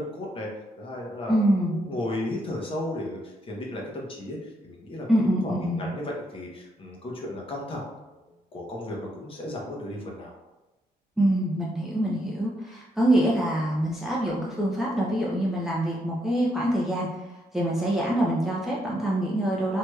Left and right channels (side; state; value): both; normal; correlation 0.77